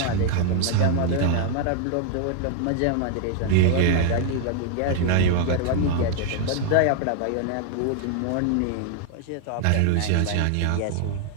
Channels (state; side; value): different; both; correlation 0.00